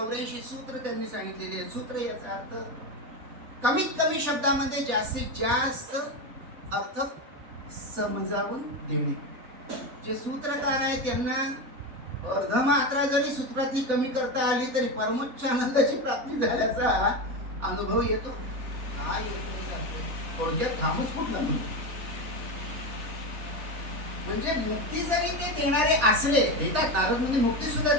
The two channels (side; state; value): left; late; 3.3 ms